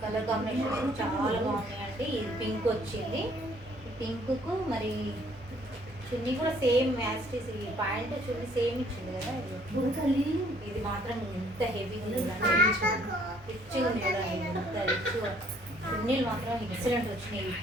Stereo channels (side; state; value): both; normal; correlation 0.62